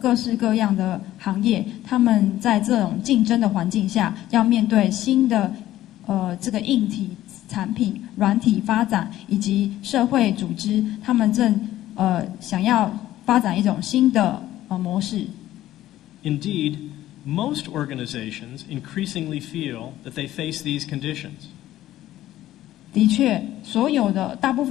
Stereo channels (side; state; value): right; quieter; 14.1 dB